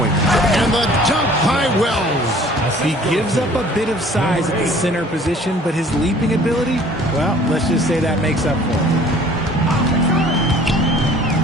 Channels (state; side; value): normal; both; correlation 0.52